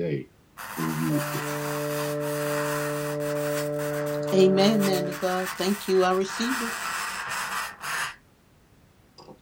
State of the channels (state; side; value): identical; both; correlation 1.00